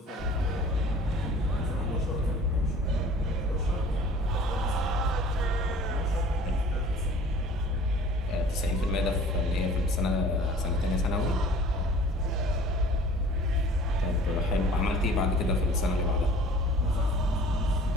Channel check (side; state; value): both; normal; correlation 0.48